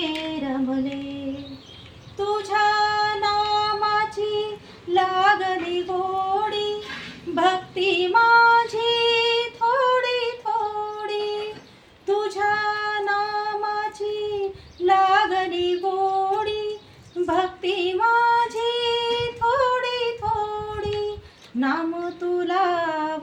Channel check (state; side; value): identical; both; correlation 1.00